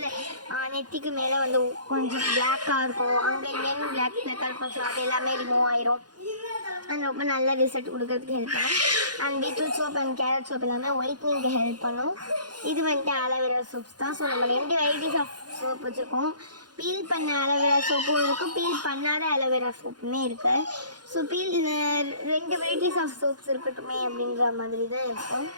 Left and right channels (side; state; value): left; late; 0.70 ms